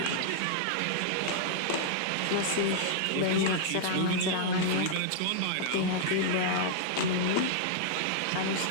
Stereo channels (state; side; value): different; both; correlation -0.01